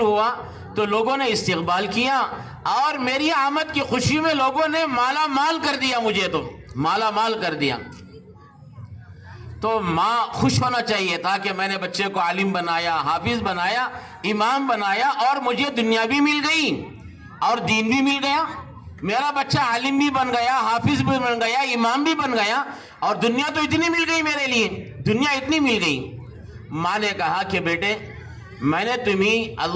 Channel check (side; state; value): both; identical; correlation 1.00